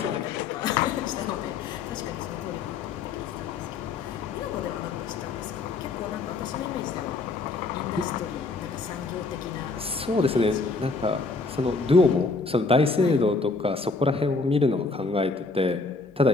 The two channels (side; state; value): right; quieter; 3.8 dB